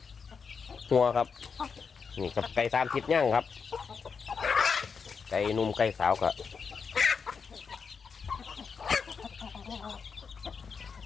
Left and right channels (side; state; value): right; quieter; 5.7 dB